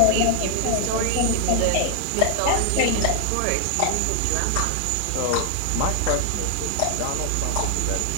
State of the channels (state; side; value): different; both; correlation 0.00